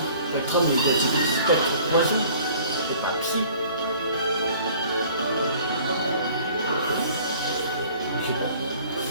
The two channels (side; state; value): both; inverted; correlation -0.51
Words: Spectrum il est type spectre poison, c'est pas psy. Ok.